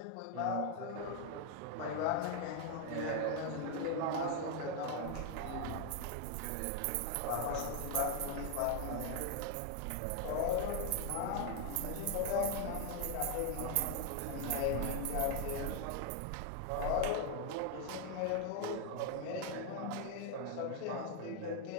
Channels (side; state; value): both; different; correlation 0.00